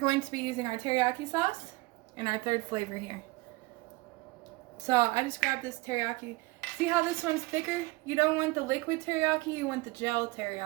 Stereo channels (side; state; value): left; quieter; 22.9 dB